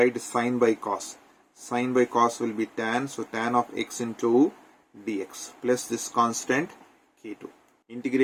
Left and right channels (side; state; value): both; identical; correlation 1.00